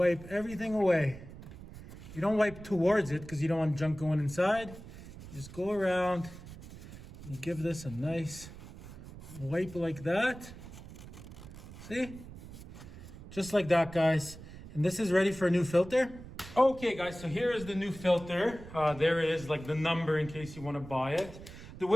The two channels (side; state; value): right; noise; rumble, 15 dB below the sound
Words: everything away. You don't wipe towards it because you don't want junk going inside. You just go around. You give this a nice wipe like that. See? Just like that, guys. And this is ready for a new filter. Okay, guys, so here is the new filter. There it is, like the number in case you want to buy it. The